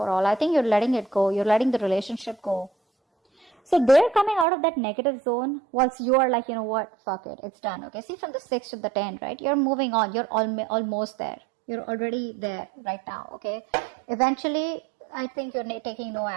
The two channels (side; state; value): left; drops out; at 4.5 s